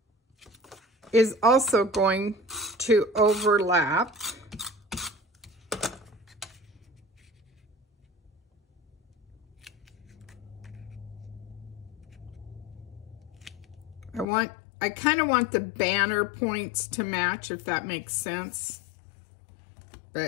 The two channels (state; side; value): drops out; right; at 14.2 s